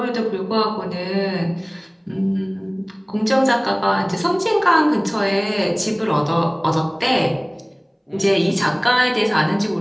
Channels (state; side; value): identical; both; correlation 1.00